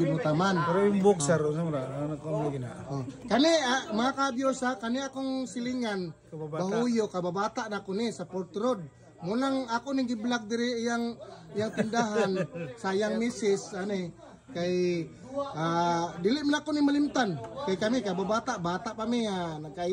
mo taman. Pero yung boxer ano ko gina. Kani mga ka-viewers kani akong silingan bahuyo kababata na ko ni sa Port Road. Munang ako ning gi-vlog diri iyang tindahan sayang misis ani kay dili man ako ni malimtan kay kami kababata bata pa mi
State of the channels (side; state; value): both; identical; correlation 1.00